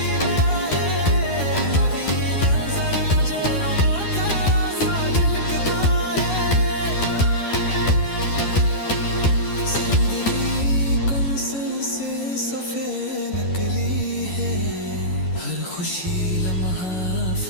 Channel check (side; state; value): right; late; 11 ms